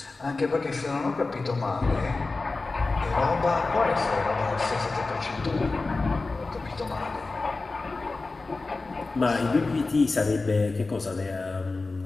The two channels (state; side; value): quieter; right; 3.6 dB